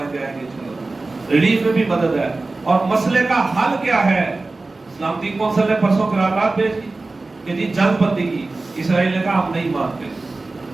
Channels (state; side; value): quieter; left; 3.3 dB